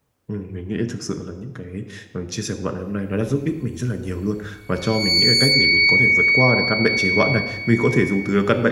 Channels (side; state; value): both; identical; correlation 1.00